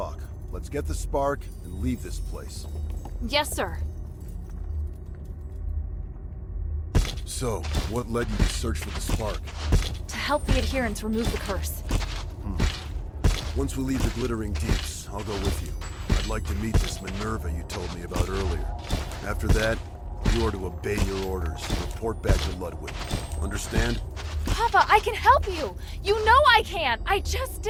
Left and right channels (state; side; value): identical; both; correlation 1.00